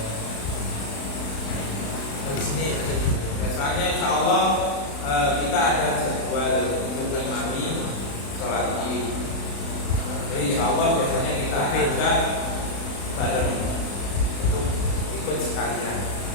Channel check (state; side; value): late; right; 36 ms